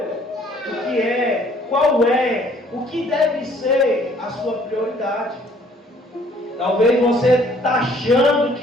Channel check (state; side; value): normal; both; correlation 0.59